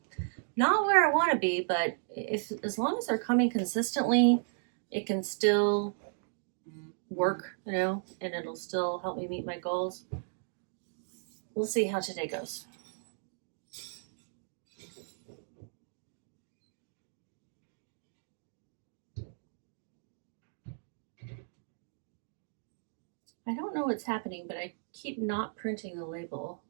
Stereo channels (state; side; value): silent; left; digital silence